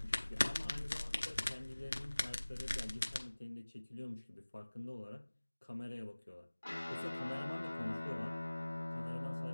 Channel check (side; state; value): both; inverted; correlation -1.00